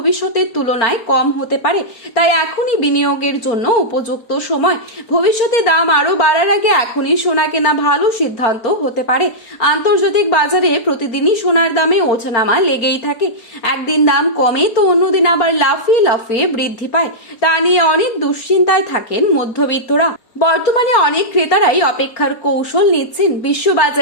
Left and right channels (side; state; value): right; late; 4.3 ms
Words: তুলনায় কম হতে পারে, তাই এখনই বিনিয়োগের জন্য উপযুক্ত সময়। ভবিষ্যতে দাম আরো বাড়ার আগে এখনই সোনা কেনা ভালো সিদ্ধান্ত হতে পারে। আন্তর্জাতিক বাজারে প্রতিদিনই সোনার দামে ওঠানামা লেগেই থাকে। একদিন দাম কমে তো অন্যদিন আবার লাফিয়ে লাফিয়ে বৃদ্ধি পায়। তা নিয়ে অনেক দুশ্চিন্তায় থাকেন মধ্যবিত্তরা। বর্তমানে অনেক ক্রেতারাই অপেক্ষার কৌশল নিচ্ছেন।